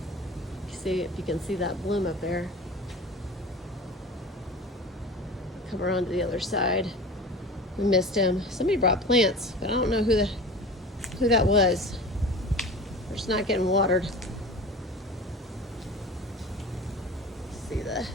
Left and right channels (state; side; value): normal; both; correlation 0.36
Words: See if you can see that bloom up there. Come around to the other side. We missed him. Somebody brought plants, but I don't know who that was. They're just not getting watered. See the